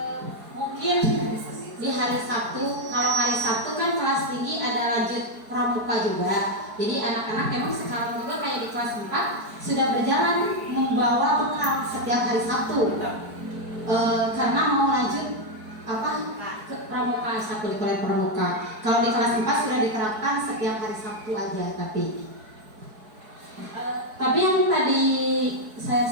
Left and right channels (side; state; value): left; late; 4.6 ms